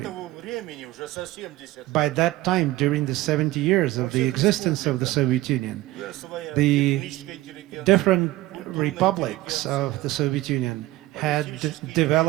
этому времени уже за 70 By that time, during the 70 years of the existence of the Soviet Union, своя the техническая интеллигенция, different republics of the Soviet Union had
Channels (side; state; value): left; quieter; 17.4 dB